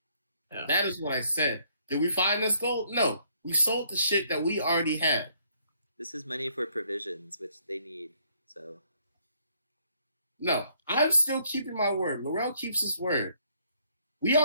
That is what I said. Did we find this gold? No. We sold the shit that we already had. This is money for provisions, which they need. So No. I'm still keeping my word. Laurel keeps his word. We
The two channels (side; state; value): both; inverted; correlation -0.67